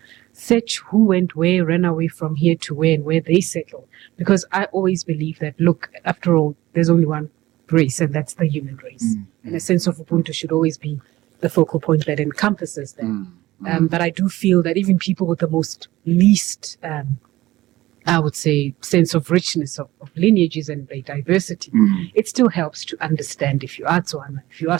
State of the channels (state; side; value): quieter; left; 17.0 dB